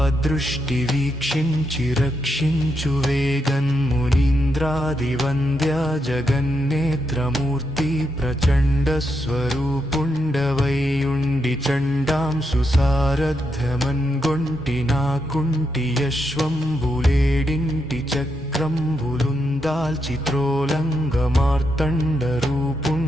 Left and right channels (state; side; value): normal; both; correlation 0.82